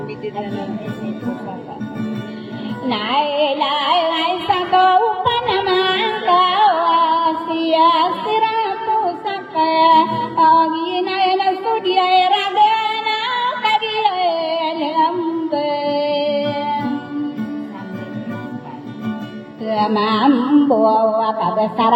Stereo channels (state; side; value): identical; both; correlation 1.00